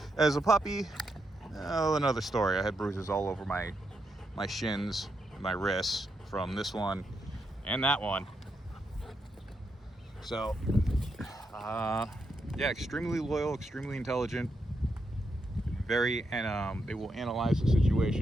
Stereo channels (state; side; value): normal; both; correlation 0.82